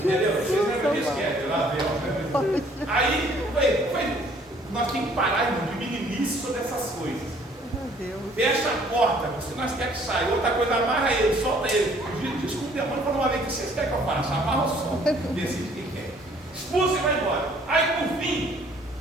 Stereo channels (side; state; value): both; normal; correlation 0.59